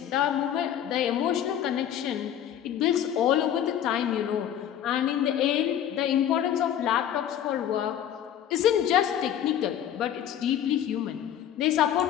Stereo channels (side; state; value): right; quieter; 10.3 dB